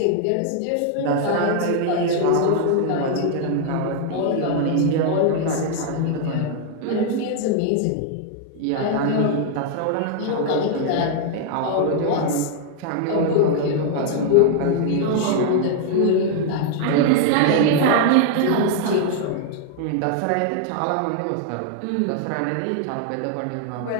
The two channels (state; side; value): different; both; correlation 0.00